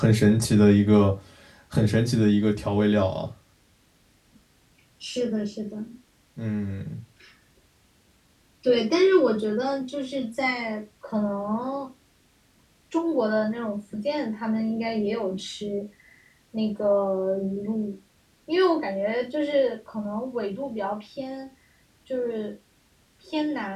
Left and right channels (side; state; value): both; identical; correlation 1.00